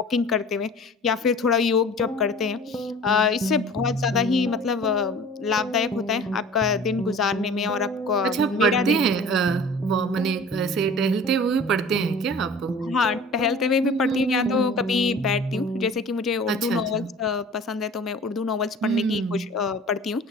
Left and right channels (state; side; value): normal; both; correlation 0.43